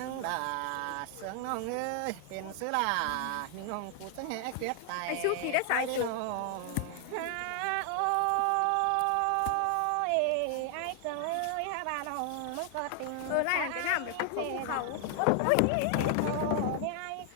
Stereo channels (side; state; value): both; different; correlation 0.00